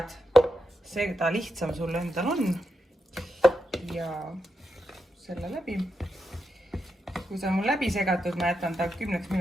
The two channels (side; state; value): both; normal; correlation 0.86